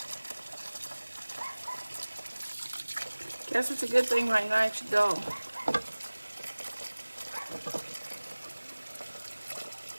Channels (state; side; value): inverted; both; correlation -1.00